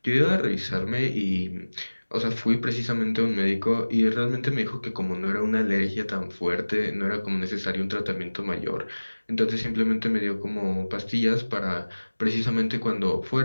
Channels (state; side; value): inverted; both; correlation -1.00